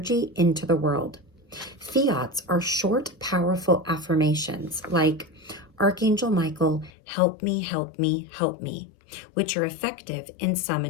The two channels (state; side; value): drops out; right; at 6.9 s